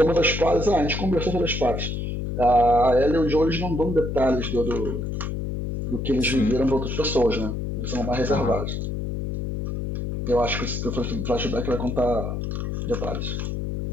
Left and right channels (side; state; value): left; noise; hum, 3 dB below the sound